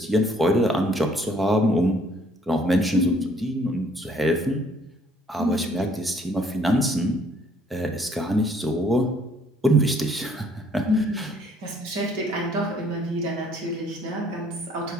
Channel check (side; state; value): both; normal; correlation 0.62